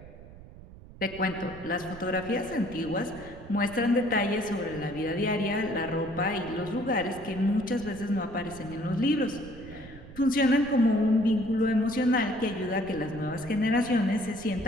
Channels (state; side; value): noise; right; rumble, 17 dB below the sound